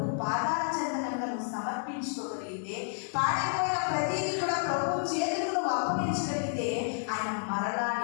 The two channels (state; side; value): silent; right; digital silence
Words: పాదాల చెందనంగా నువ్వు సమర్పించుకోగలిగితే, పాడైపోయిన ప్రతిదీ కూడా ప్రభు చేతులకు అప్పగించగలిగితే ఆయన మరలా